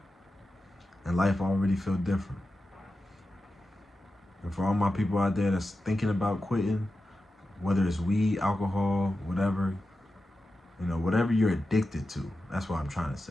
and life already feel different. And for all my people out there that's thinking about quitting, whether it's weed, alcohol, whatever, whatever you're addicted to, that's what I'm trying to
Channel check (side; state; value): both; normal; correlation 0.91